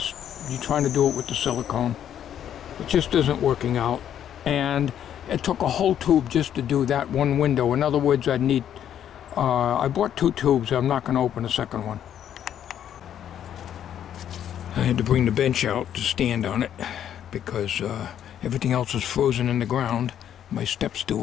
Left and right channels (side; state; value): right; quieter; 10.0 dB